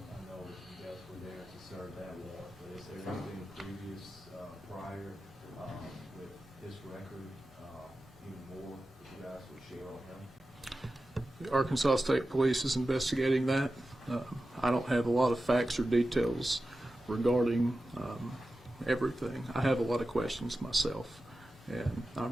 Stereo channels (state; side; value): normal; both; correlation 0.94